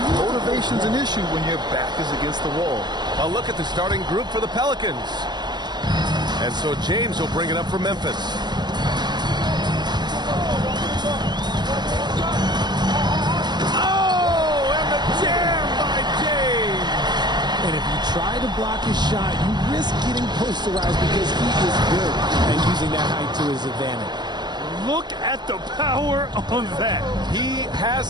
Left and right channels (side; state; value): left; late; 0.21 ms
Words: Motivation's an issue when your back is against the wall. A look at the starting group for the Pelicans. And so James will bring it up for Memphis. And if you try to block his shot, you risk getting posterized because he is good at using that height to his advantage. Look at the power on that. He